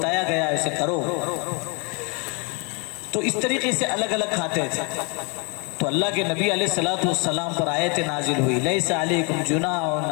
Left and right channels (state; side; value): quieter; right; 32.6 dB